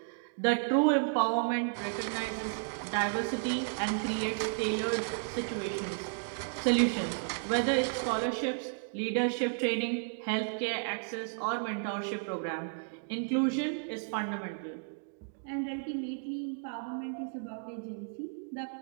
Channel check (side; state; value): left; silent; digital silence